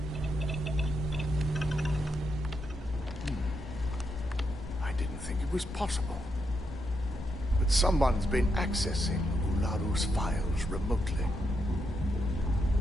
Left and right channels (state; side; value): normal; both; correlation 0.81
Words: was possible. But someone's been accessing Ularu's files remotely.